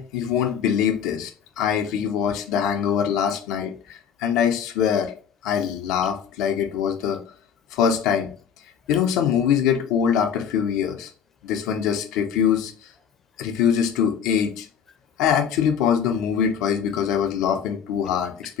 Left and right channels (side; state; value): right; quieter; 7.9 dB